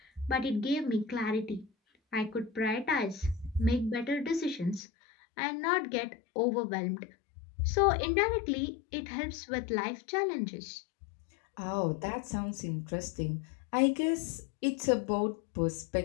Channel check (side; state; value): right; drops out; at 4.8 s